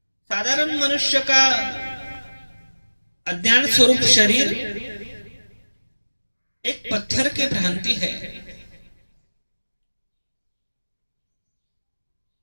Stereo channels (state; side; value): inverted; both; correlation -1.00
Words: साधारण मनुष्य का अज्ञान स्वरूप शरीर एक पत्थर की भ्रांति है।